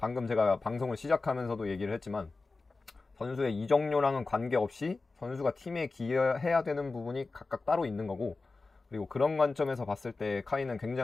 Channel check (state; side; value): quieter; right; 3.7 dB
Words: 제가 방송을 시작하면서도 얘기를 했지만 선수의 이적료랑은 관계없이 선수가 팀에 기여해야 되는 부분이 각각 따로 있는 거고, 그리고 그런 관점에서 봤을 때 카이는